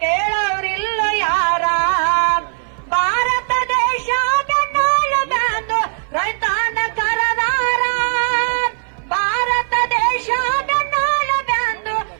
ಕೇಳೋರಿಲ್ಲ ಯಾರ ಭಾರತ ದೇಶ ಬೆನ್ನಾಳು ಬ್ಯಾಂದು ರೈತನ ಕರದಾರ ಭಾರತ ದೇಶ ಬೆನ್ನಾಳು ಬ್ಯಾಂದು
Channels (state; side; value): silent; left; 59 dB below the other